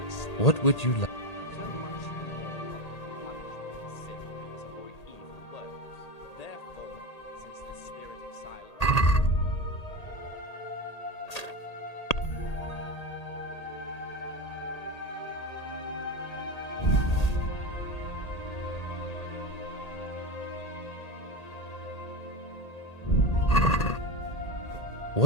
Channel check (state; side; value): late; right; 1.8 ms